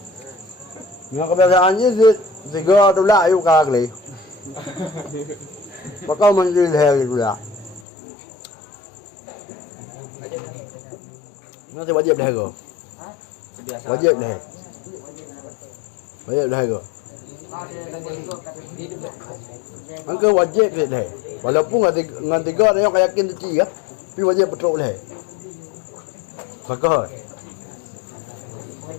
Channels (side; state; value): right; drops out; at 7.9 s